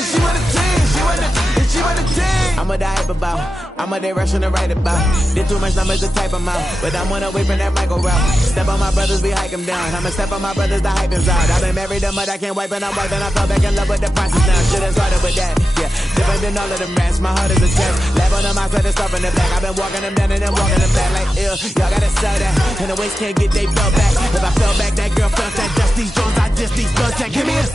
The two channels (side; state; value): both; normal; correlation 0.92